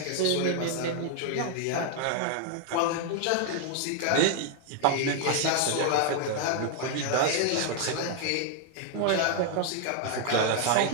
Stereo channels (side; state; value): both; different; correlation 0.00